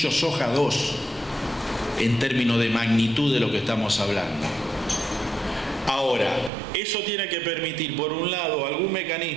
soja 2 en términos de magnitud de lo que estamos hablando. Ahora, eso tiene que permitir, por un lado, algún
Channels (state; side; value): drops out; left; at 6.5 s